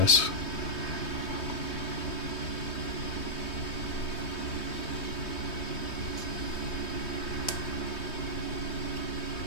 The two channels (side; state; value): right; late; 3.2 ms